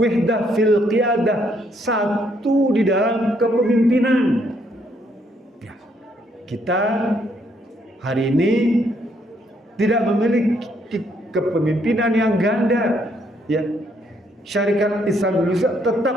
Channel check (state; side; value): normal; both; correlation 0.71